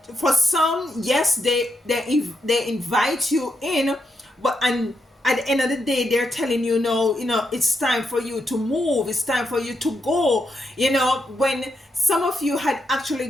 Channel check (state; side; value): normal; both; correlation 0.82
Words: for some, yes, they invite you in, but and at the end of the day, they're telling you, no, it's time for you to move, it's time for you to go. When some of you had actually